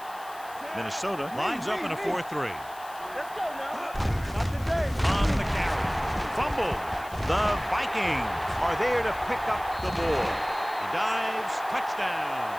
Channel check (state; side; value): noise; left; hiss, 20 dB below the sound